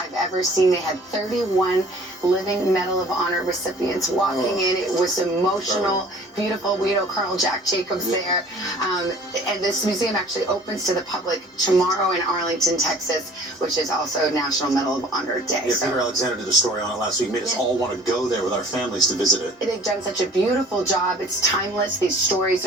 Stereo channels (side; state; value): both; normal; correlation 0.50